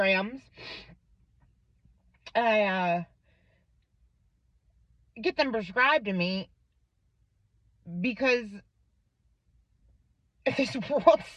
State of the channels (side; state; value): both; identical; correlation 1.00